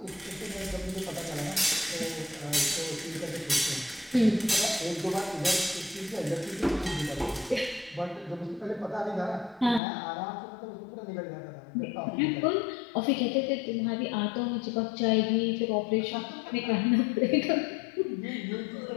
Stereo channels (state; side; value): drops out; right; at 9.8 s